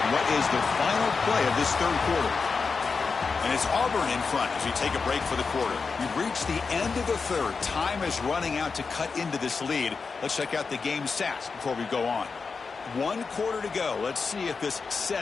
what is the final play of this third quarter. And it's Auburn in front as we take a break for the quarter. We've reached the end of the third. Time is running out to cut into this lead. Let's check out the game stats before we go on. 1 quarter to go. Let's see if this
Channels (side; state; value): right; quieter; 4.9 dB